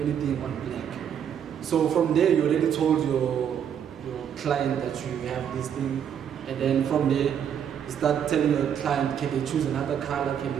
on black. So from there, you already told your client that you have this thing, and then from there, you start telling your client, can they choose another color, can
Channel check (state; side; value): quieter; left; 8.7 dB